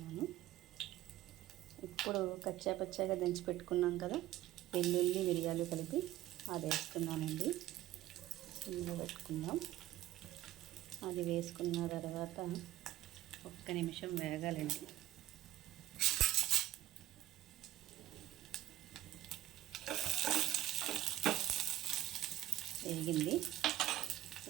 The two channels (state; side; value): quieter; left; 15.0 dB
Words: ఇప్పుడు కచ్చాపచ్చాగా దంచి పెట్టుకున్నాం కదా వెల్లుల్లి, మిరియాలు కలిపి అది వేస్తున్నానండి. ఇందులో పెట్టుకుందాం. అది వేసుకున్న తర్వాత 1 నిమిషం వేగాలండి. వేగింది.